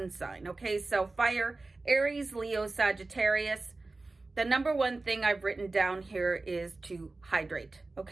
sign. Okay. So fire, Aries, Leo, Sagittarius. The number one thing I've written down here is to hydrate.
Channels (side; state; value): left; quieter; 3.3 dB